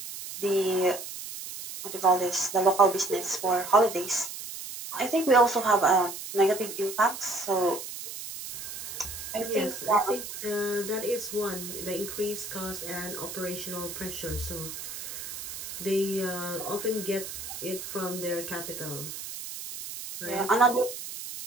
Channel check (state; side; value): noise; right; hiss, 9 dB below the sound